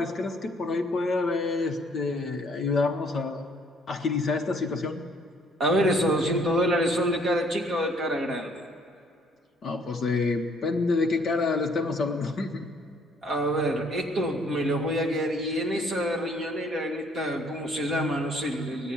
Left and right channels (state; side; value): normal; both; correlation 0.62